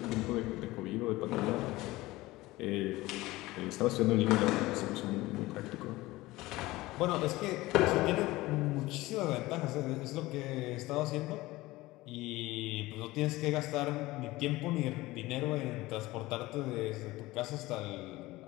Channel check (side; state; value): right; quieter; 19.1 dB